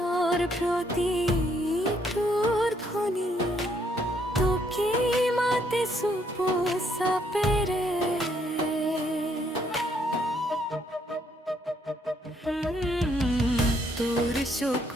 প্ৰতি তোৰ ধ্বনি তোকে মাতে চুপ চাপেৰে তোৰ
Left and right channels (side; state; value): both; normal; correlation 0.70